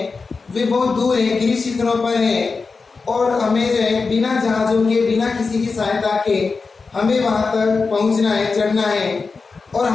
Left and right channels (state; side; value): quieter; right; 4.4 dB